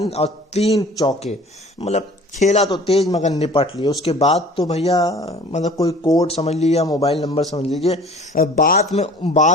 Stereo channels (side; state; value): both; normal; correlation 0.48